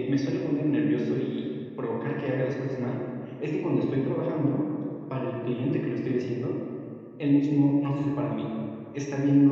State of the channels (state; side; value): identical; both; correlation 1.00